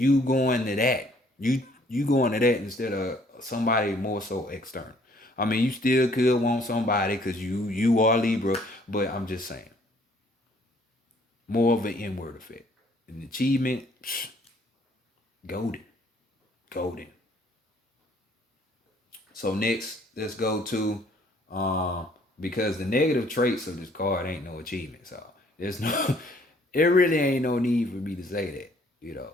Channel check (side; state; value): both; normal; correlation 0.61